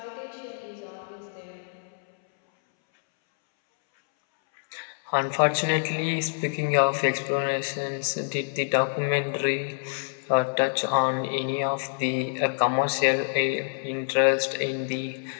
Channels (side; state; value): right; silent; 61 dB below the other